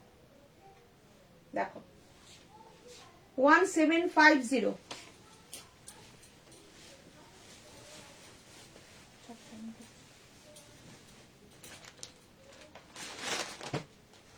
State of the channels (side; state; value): both; identical; correlation 1.00